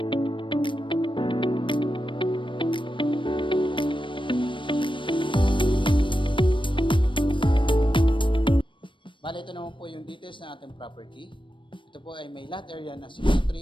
bale, ito naman po yung details ng ating property. Ito po ay may lot area na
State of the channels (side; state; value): right; late; 0.24 ms